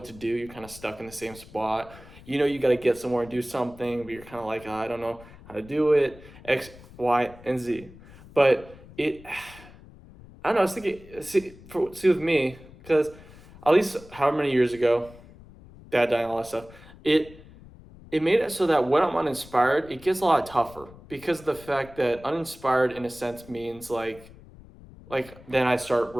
to do. You're kind of stuck in the same spot. You know you got to get somewhere and do something, but you're kind of like, "Oh, I don't know how to do it. X, Y, and Z." But I don't know. I was thinking, see with me, because at least however many years ago, dad dying, all that stuff. It it made it so that when I'm uninspired, it gets a lot tougher because of the fact that uninspired in a sense means like then I start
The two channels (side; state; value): left; noise; rumble, 20 dB below the sound